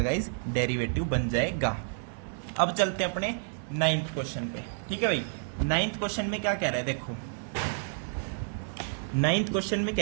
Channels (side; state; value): left; silent; digital silence